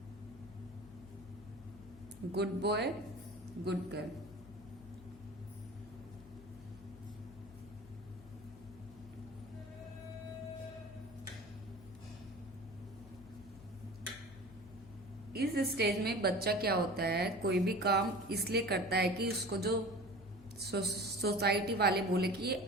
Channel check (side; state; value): left; noise; hum, 18 dB below the sound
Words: good girl. इस स्टेज में बच्चा क्या होता है, कोई भी काम इसलिए करता है कि उसको जो सोसाइटी वाले बोले कि ये